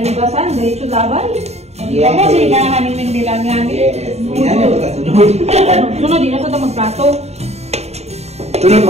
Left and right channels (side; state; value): left; late; 0.31 ms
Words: basan, diretso labay. Yes. Ako sila namin nilang yan. Yes. Yan yung kasunod. Sunod din na sa magplato. Sunod